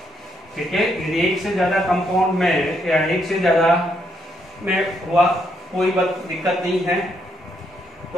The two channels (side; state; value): both; normal; correlation 0.75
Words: ठीक है, यदि एक से ज्यादा कंपाउंड में या एक से ज्यादा में हुआ कोई दिक्कत नहीं है,